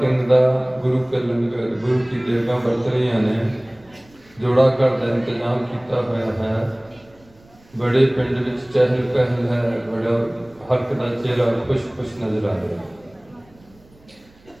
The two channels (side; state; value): right; noise; rumble, 29 dB below the sound